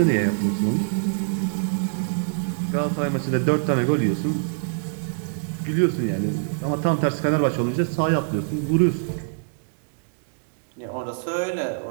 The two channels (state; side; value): silent; left; digital silence